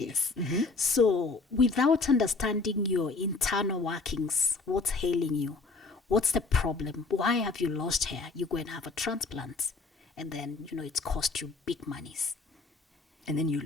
Yes. So, without understanding your internal workings, what's ailing you, what's the problem, why have you lost hair, you go and have a transplant, and then it's cost you big monies, And then you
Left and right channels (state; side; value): quieter; right; 3.9 dB